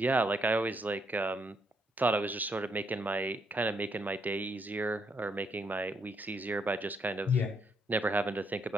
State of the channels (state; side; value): normal; both; correlation 0.74